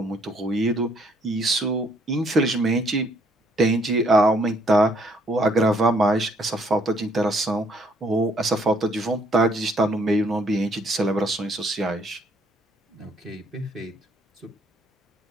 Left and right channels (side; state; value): both; normal; correlation 0.66